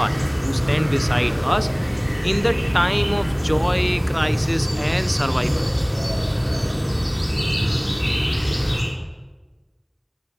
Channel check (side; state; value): both; identical; correlation 1.00